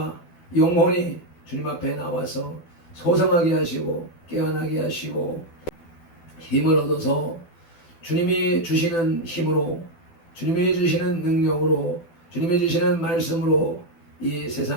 영혼이 주님 앞에 나와서 소성하게 하시고 깨어나게 하시고 힘을 얻어서 주님이 주시는 힘으로, 주님이 주시는 능력으로, 주님이 주시는 말씀으로 이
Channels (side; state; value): right; late; 12 ms